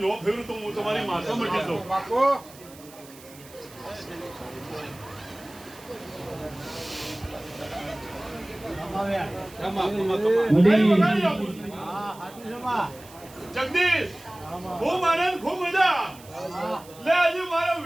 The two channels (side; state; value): right; noise; hiss, 21 dB below the sound